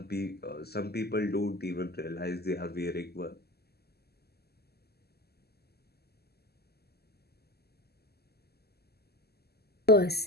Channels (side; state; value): right; late; 0.46 ms